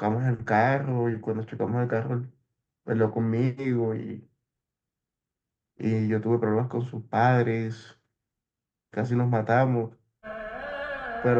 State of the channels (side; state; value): both; identical; correlation 1.00